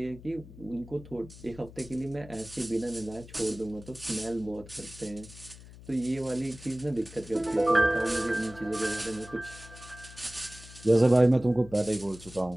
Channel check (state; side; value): noise; left; hum, 18 dB below the sound